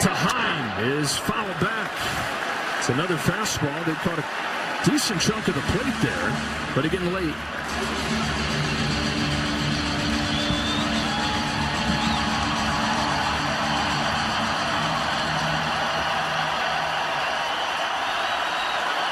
Heim is fouled back. It's another fastball. They caught a decent chunk of the plate there, but again late.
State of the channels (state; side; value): identical; both; correlation 1.00